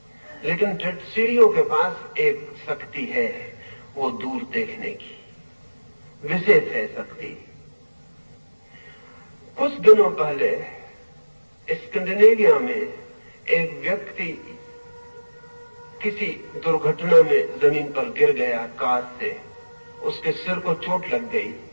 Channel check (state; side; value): inverted; both; correlation -1.00